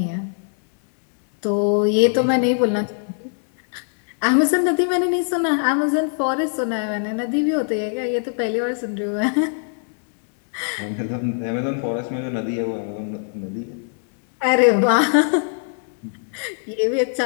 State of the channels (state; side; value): silent; right; 59 dB below the other